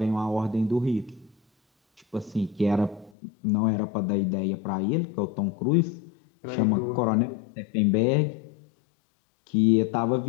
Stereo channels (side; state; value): right; drops out; at 3.1 s